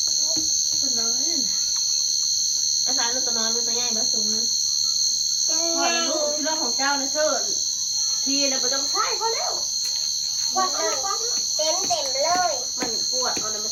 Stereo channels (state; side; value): noise; left; rumble, 28 dB below the sound